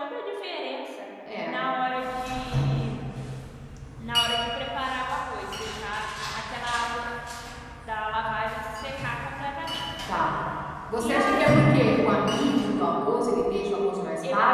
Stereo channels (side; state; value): both; identical; correlation 1.00